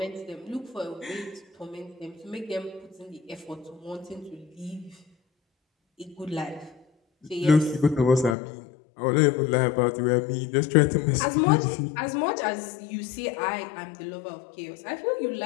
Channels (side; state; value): right; drops out; at 8.3 s